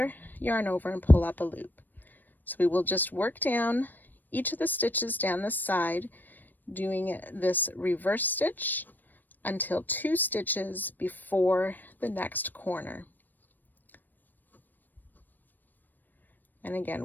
yarn over, and pull up a loop. So we will just work down each of the stitches down this side, doing this reverse stitch until 2 stitches before the next corner. And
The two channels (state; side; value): late; right; 0.090 ms